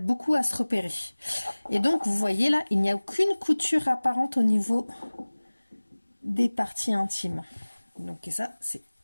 beaucoup à se repérer. Et donc vous voyez là, il n'y a aucune couture apparente au niveau des parties intimes. Donc et ça c'est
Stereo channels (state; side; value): inverted; both; correlation -1.00